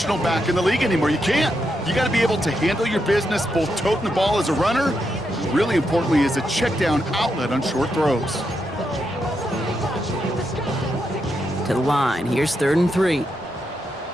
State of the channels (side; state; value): both; normal; correlation 0.83